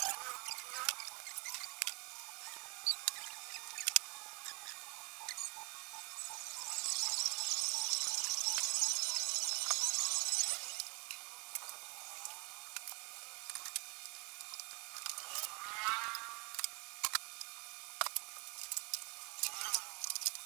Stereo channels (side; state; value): left; quieter; 28.8 dB